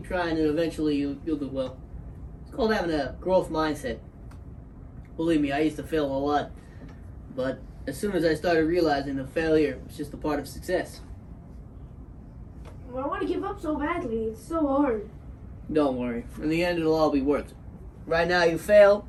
trying and eventually you'll do well. It's called having a growth mindset. Believe me, I used to fail a lot. But as soon as I started realizing that failure was just a part of success. Well, I want to give up so badly. It's so hard. Don't worry. In the end, it'll all be worth it. Right now, you fail.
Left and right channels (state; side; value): identical; both; correlation 1.00